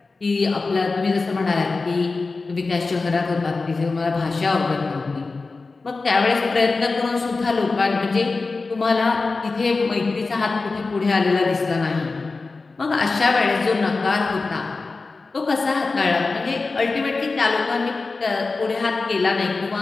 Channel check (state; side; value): quieter; right; 3.9 dB